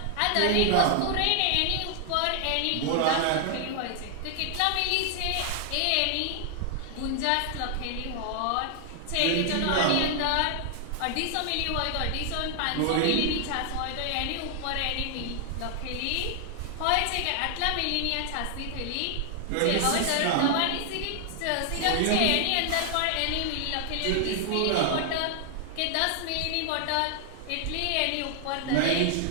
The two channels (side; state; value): both; different; correlation 0.00